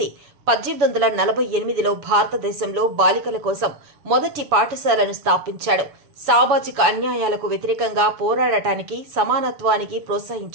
1848లో భారతదేశంలో బాలికల కోసం మొదటి పాఠశాలను స్థాపించాడు. సామాజిక అన్యాయాలకు వ్యతిరేకంగా పోరాడటానికి, సమానత్వానికి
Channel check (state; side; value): late; left; 7.0 ms